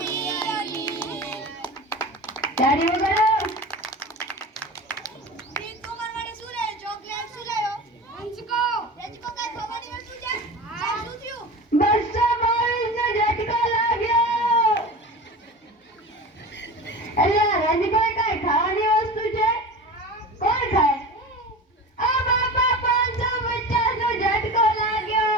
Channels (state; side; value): normal; both; correlation 0.32